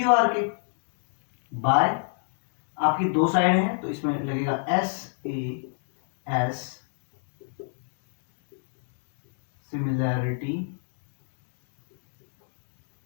के, बाय आपकी दो साइड हैं तो इसमें लगेगा SAS सिमिलैरिटी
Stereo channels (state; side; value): silent; right; 59 dB below the other